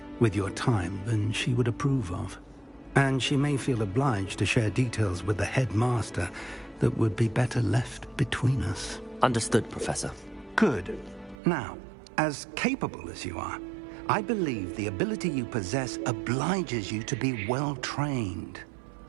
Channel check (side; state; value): left; drops out; at 11.4 s